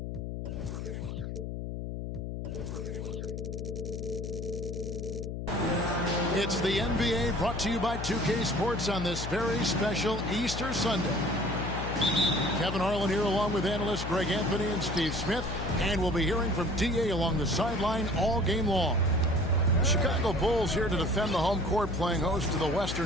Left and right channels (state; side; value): noise; left; hum, 5 dB below the sound